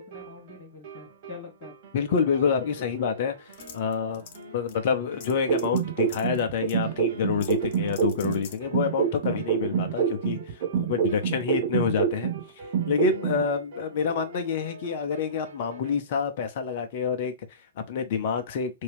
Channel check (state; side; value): inverted; both; correlation -0.37